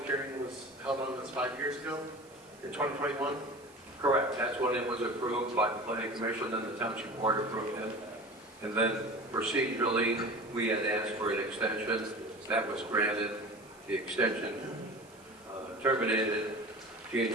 hearing was held on this 5 years ago, in 2021? Correct, that's when it was approved by the planning commission and the township board approved it. And then procedurally, we had asked for an extension, that was granted. The extension terminated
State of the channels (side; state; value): right; noise; hiss, 26 dB below the sound